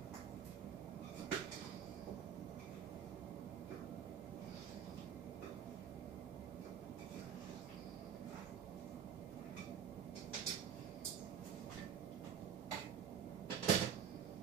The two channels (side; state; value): left; quieter; 8.4 dB